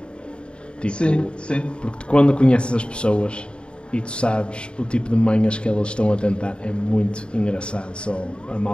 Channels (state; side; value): late; right; 0.054 ms